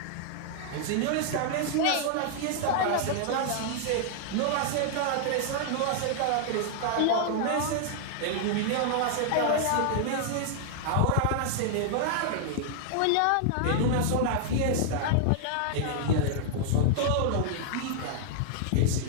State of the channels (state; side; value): different; both; correlation -0.01